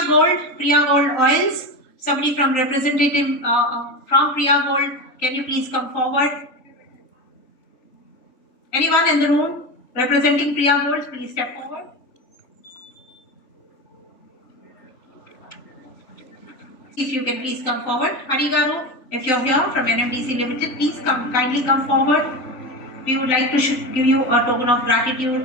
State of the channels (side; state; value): right; late; 3.9 ms